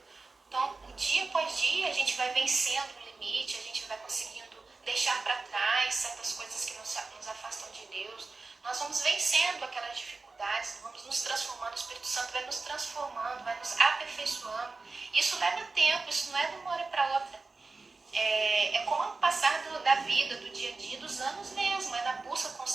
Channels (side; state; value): left; quieter; 3.8 dB